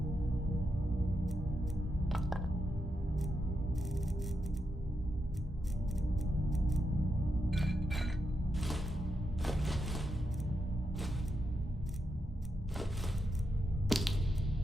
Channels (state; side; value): normal; both; correlation 0.85